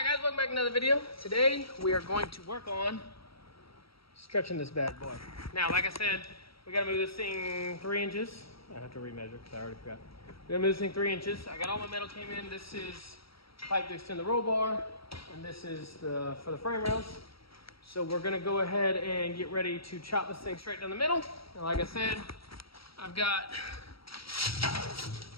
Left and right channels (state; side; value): late; right; 0.75 ms